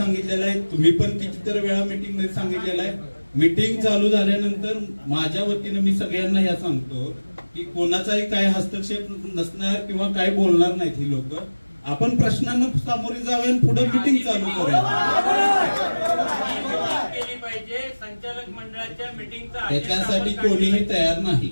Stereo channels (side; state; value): both; inverted; correlation -1.00